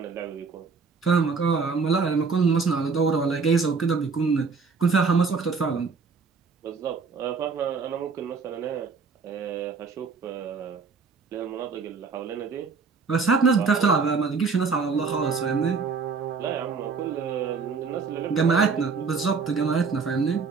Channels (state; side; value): quieter; left; 4.9 dB